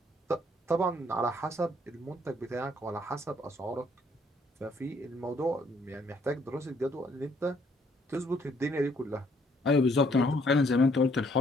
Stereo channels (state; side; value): normal; both; correlation 0.66